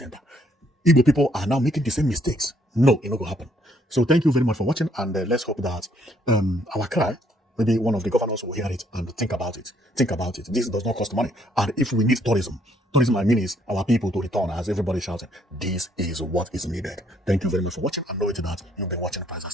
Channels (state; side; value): normal; both; correlation 0.68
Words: Igbo people are now making the same mistakes. No, it not going to happen. So thank you very much for watching, and let's hope that our cry, maybe one of the governors will hear it and think about it. Think about it. This does not cost money. And if we need tourism, I mean is our people to return, as everybody shouting, this is what is needed. Thank you very much for watching, and know it that you've been watching Princess